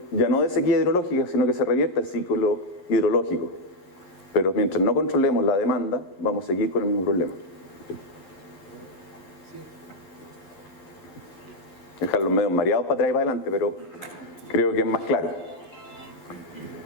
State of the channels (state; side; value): late; right; 11 ms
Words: ya no de sequía hidrológica, sino que se revierta el ciclo hidrológico. Pero mientras no controlemos la demanda, vamos a seguir con el mismo problema. Dejar los medios mareados para atrás y para adelante, pero creo que es más claro.